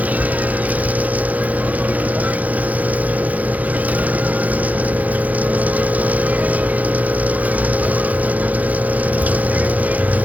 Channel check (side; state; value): left; late; 0.076 ms